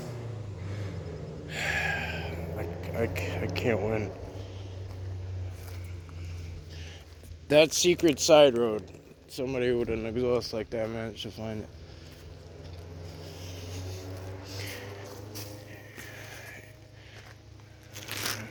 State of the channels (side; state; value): both; identical; correlation 1.00